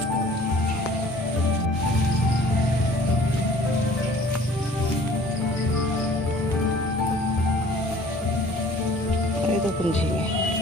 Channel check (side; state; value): both; normal; correlation 0.51